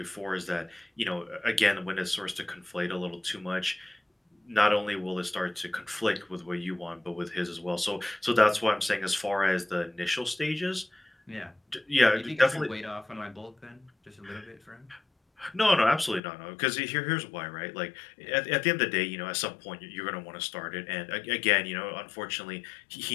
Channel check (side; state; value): right; drops out; at 16.2 s